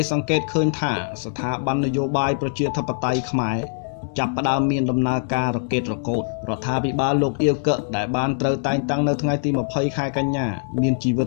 សង្កេតឃើញថាស្ថាប័ននយោបាយប្រជាធិបតេយ្យខ្មែរចាប់ផ្ដើមមានដំណើរការរកេតរកូតរដ្ឋាភិបាលលោកអៀវកឹកដែលបានត្រូវតែងតាំងនៅថ្ងៃទី20ខែកញ្ញាមានជីវិត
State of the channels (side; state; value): right; silent; digital silence